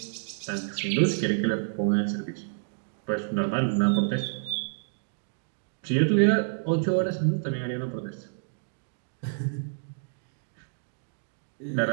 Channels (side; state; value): left; silent; digital silence